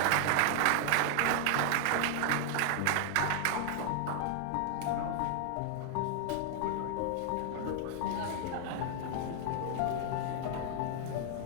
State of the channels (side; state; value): both; different; correlation 0.00